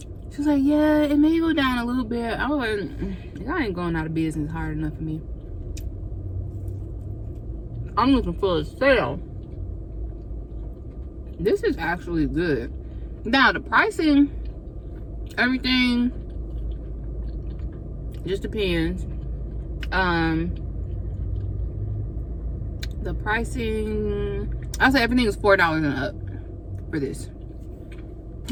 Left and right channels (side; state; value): both; identical; correlation 1.00